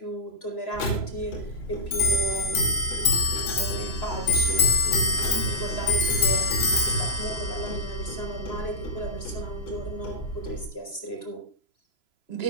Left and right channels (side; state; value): right; late; 3.0 ms